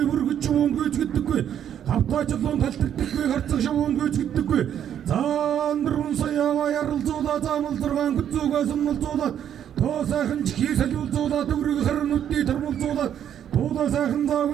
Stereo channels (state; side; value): quieter; left; 9.7 dB